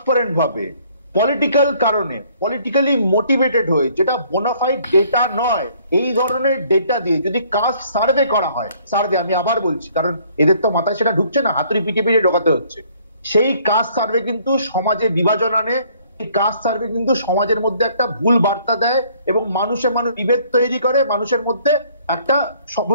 ভাবে, পলিটিক্যাল কারণে, পলিটিক্যালি মোটিভেটেড হয়ে, যেটা বোনাফাইড ডেটা নয়, এই ধরনের ডেটা দিয়ে যদি কাস্ট সার্ভে করা হয়, সার্ভে আমি আবার বলছি কারণ এদের তো মাথায় সেটা ঢুকছে না, হাতুড়ি পিটিয়ে ঢোকাতে হচ্ছে, সেই কাস্ট সার্ভে কিন্তু সমাজে বিভাজন আনে, এই কাস্ট সার্ভে কিন্তু সমাজের মধ্যে একটা ভুল বার্তা দেয় এবং মানুষে বিভেদ তৈরি করে, মানুষের মধ্যে একটা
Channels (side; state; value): both; inverted; correlation -0.61